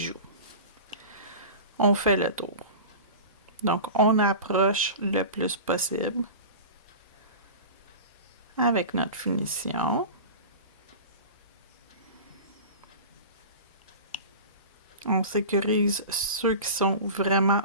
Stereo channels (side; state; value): both; inverted; correlation -0.33